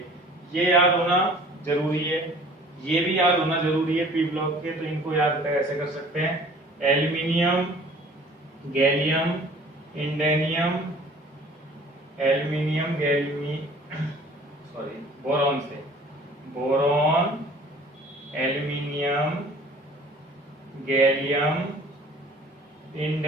ये याद होना जरूरी है, ये भी याद होना जरूरी है पी ब्लॉक के। तो इनको याद कैसे कर सकते हैं? एल्यूमिनियम, गैलियम, इंडेनियम, एल्यूमिनियम, बोरॉन से, बोरॉन, एल्यूमिनियम, गैलियम,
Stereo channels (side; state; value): both; normal; correlation 0.49